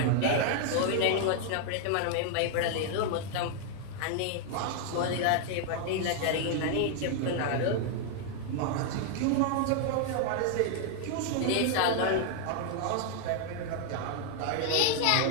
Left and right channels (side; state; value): both; different; correlation 0.00